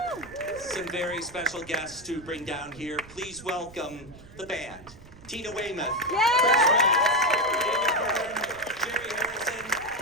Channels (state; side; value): noise; right; rumble, 20 dB below the sound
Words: some very special guests to bring down here. Please welcome the band. Tina Weymouth, Frantz, David Byrne, Jerry Harrison,